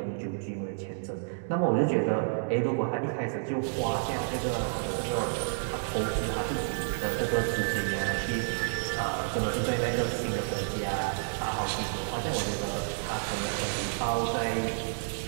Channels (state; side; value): silent; left; digital silence